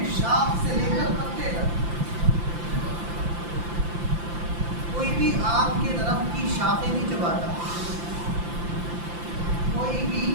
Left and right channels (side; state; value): left; late; 5.8 ms